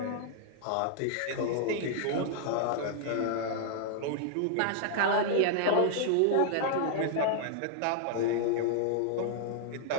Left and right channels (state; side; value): different; both; correlation -0.01